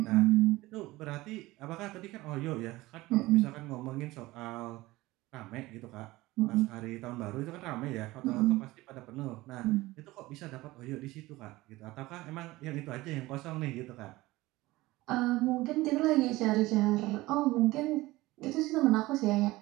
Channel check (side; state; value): left; quieter; 19.1 dB